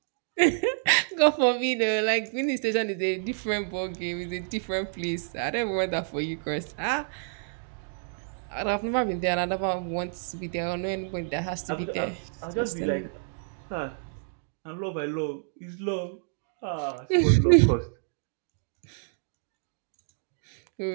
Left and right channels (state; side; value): silent; left; digital silence